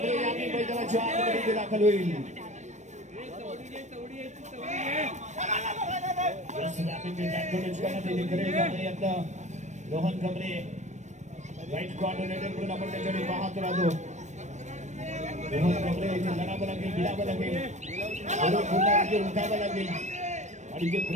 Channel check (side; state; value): left; late; 0.34 ms